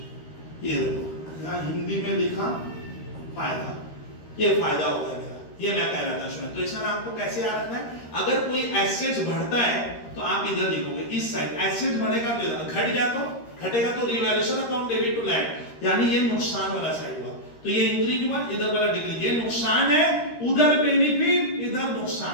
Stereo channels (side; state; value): right; late; 13 ms